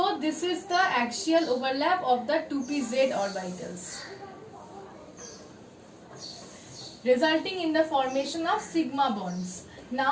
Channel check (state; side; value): identical; both; correlation 1.00